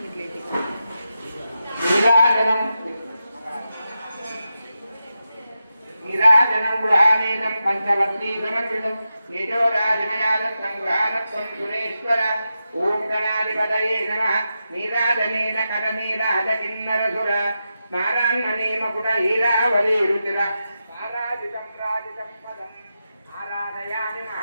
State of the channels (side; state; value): both; inverted; correlation -0.89